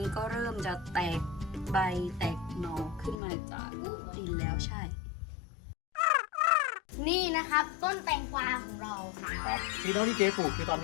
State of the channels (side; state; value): right; drops out; at 3.2 s